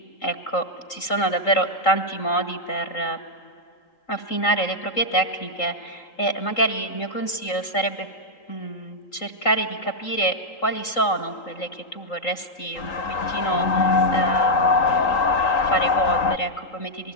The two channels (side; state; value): right; late; 3.8 ms